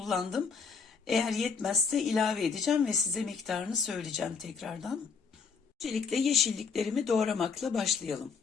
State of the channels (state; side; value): quieter; right; 5.3 dB